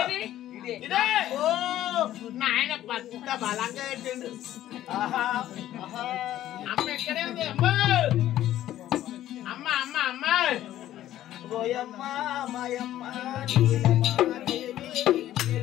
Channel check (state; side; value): quieter; right; 13.1 dB